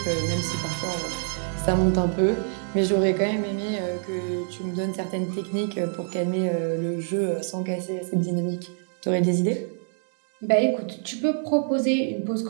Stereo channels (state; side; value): silent; left; digital silence